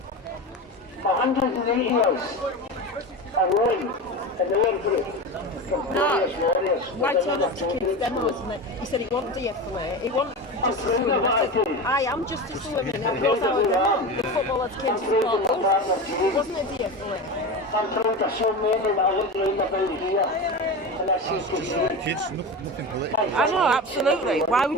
For 180 years, a rowing in the World Group. No, why turn up to kids' demos? And he said he won't de-escalate, he won't just assume. I said, I am just assuming that goes our demo. The footballers came to support us. It wasn't a de-escalate. I'm trying to show men that I look round about here. And I see Kids, nothing political. I know, absolutely. Why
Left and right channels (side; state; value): both; normal; correlation 0.25